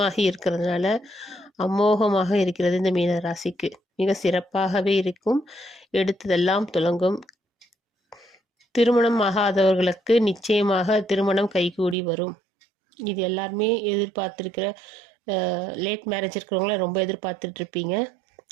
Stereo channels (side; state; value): left; drops out; at 12.0 s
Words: இருக்கிறதுனால அமோகமாக இருக்கிறது. இந்த மீன ராசிக்கு மிக சிறப்பாகவே இருக்கும். எடுத்ததெல்லாம் துலங்கும். திருமணம் ஆகாதவர்களுக்கு நிச்சயமாக திருமணம் கைகூடி வரும். இது எல்லாருமே எதிர்பார்த்துருக்கிற, லேட் மேரேஜ் இருக்கிறவங்களாம் ரொம்ப எதிர்பார்த்துட்ருப்பீங்க.